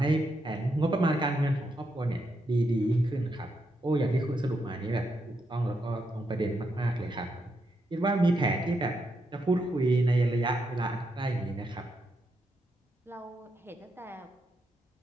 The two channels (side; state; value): both; normal; correlation 0.81